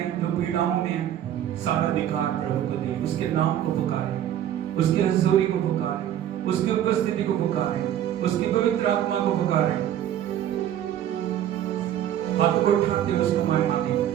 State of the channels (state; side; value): quieter; left; 11.1 dB